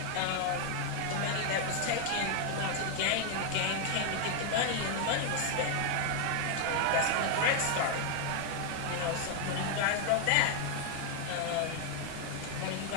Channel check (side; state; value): both; different; correlation 0.00